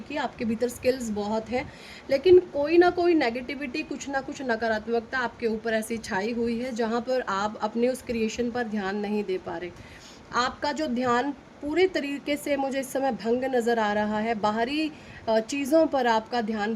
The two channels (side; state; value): both; identical; correlation 1.00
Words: की, आपके भीतर स्किल्स बहुत हैं, लेकिन कोई ना कोई नेगेटिविटी, कुछ ना कुछ नकारात्मकता आपके ऊपर ऐसी छाई हुई है जहाँ पर आप अपने उस क्रिएशन पर ध्यान नहीं दे पा रहे। आपका जो ध्यान पूरे तरीके से मुझे इस समय भंग नज़र आ रहा है, बाहरी चीज़ों पर आपका ध्यान